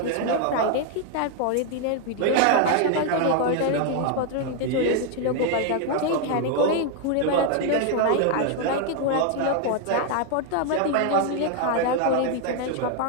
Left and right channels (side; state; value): both; different; correlation 0.00